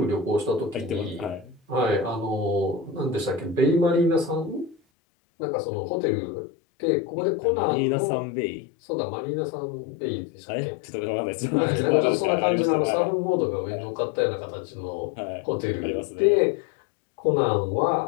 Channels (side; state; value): right; drops out; at 4.8 s